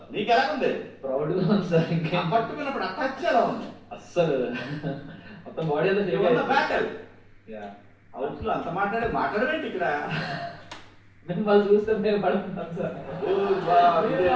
నీకు ఎలా ఉంది? ప్రౌడ్గా ఉంది సార్. ఇంకా పట్టుకున్నప్పుడు అటాచ్ ఎలా ఉంది? అస్సలు మొత్తం బాడీ అంతా బ్యాటల్ హౌస్ లో అంత మాట్లాడమేంటి ఇక్కడ? మిమ్మల్ని చూస్తే మేము పడుతున్నాం సార్.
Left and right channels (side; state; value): both; identical; correlation 1.00